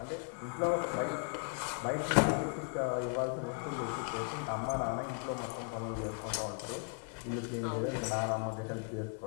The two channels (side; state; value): right; quieter; 39.0 dB